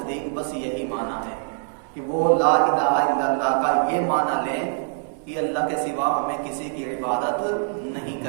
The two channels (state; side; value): silent; left; 59 dB below the other